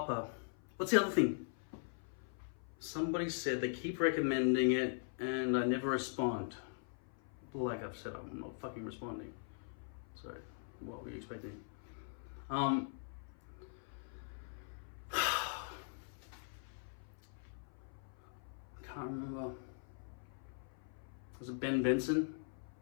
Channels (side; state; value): right; silent; 50 dB below the other